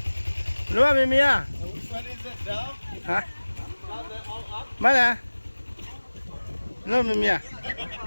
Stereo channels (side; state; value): both; inverted; correlation -1.00